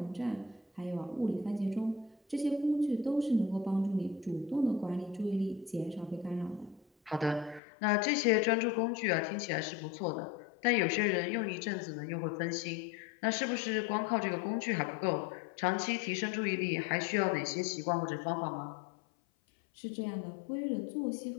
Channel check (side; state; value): right; drops out; at 7.6 s